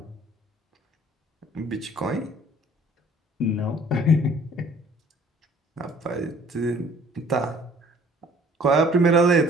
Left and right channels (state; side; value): normal; both; correlation 0.54